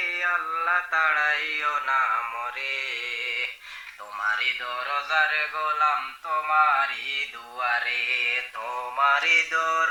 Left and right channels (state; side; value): identical; both; correlation 1.00